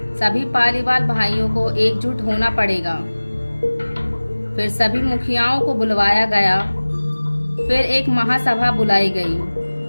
सभी पालीवाल भाइयों को एकजुट होना पड़ेगा। फिर सभी मुखियाओं को बुलवाया गया। फिर एक महासभा बुलाई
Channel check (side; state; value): both; inverted; correlation -1.00